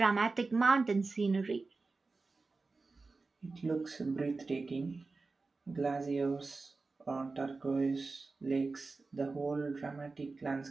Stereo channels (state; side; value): quieter; left; 3.8 dB